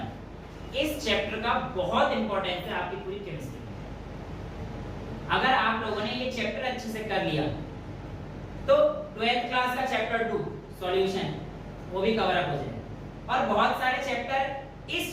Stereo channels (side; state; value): both; identical; correlation 1.00